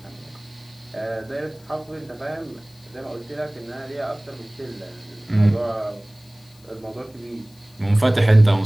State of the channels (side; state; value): left; noise; hiss, 28 dB below the sound